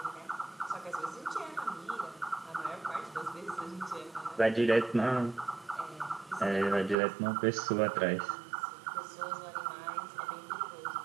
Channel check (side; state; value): left; drops out; at 7.0 s